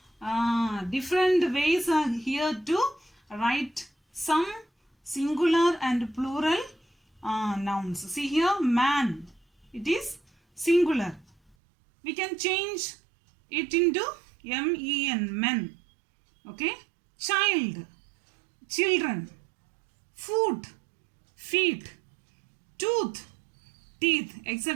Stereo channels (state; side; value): drops out; left; at 11.6 s